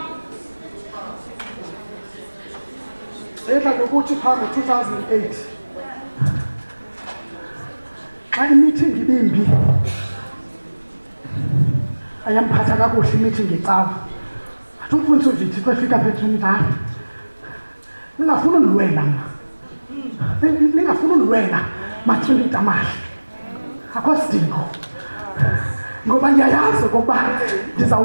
edla ngokuthi phaa ngo-2008 xa imeeting ibimbi ayamphatha kakuhle imeeting ecawa. Athi umfundisi uVithi xa efika phethu umdala, ningafuni undilwela mna, ningafuni undilwela matrili tamahle, akho sidingo, ngoba ndiyayazi okokuba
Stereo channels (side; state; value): both; inverted; correlation -1.00